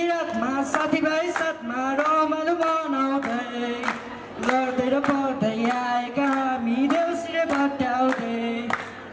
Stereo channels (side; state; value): both; identical; correlation 1.00